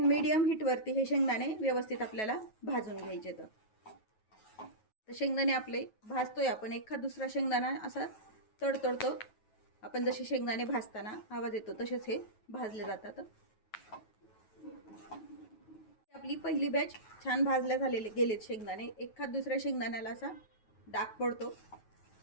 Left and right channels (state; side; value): late; right; 9.3 ms